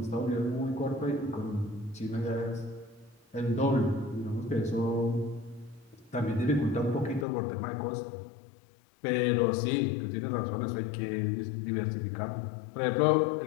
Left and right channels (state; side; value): drops out; right; at 7.2 s